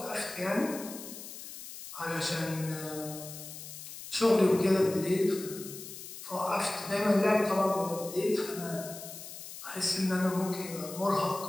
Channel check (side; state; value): left; noise; hiss, 12 dB below the sound